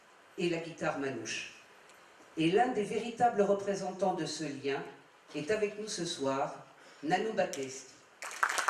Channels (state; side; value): identical; both; correlation 1.00